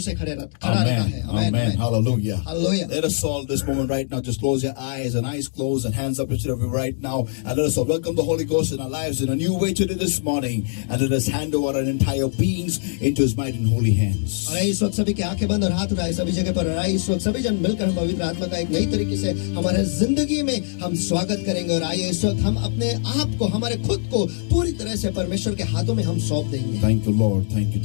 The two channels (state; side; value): silent; right; digital silence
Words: से खड़ा रहता है। Amen. Amen. Hallelujah. Hallelujah. Let us all this moment right now just close your eyes and eyes closed and hands up instead of you right now. And let us all welcome the Holy Ghost in our lives in a new way today this morning. And let us hand over our entire beings into his mighty and holy hands. और इस वक्त सभी की आंखें बंद और हाथ उठाए सभी जगह पर। और इस वक्त सभी जन मिलकर हम पवित्र आत्मा का एक नई तरीके से हमारे जिंदगी में हम स्वागत करेंगे। और आइए इस वक्त हम अपने आप को हमारे खुद को पूरी तरह से परमेश्वर के हाथों में हम सौंप देंगे। Thank you, Lord. Thank you,